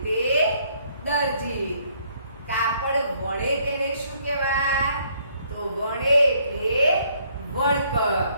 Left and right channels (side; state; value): both; inverted; correlation -0.66